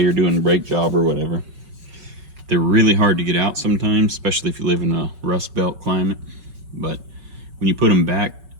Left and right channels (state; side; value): late; left; 5.3 ms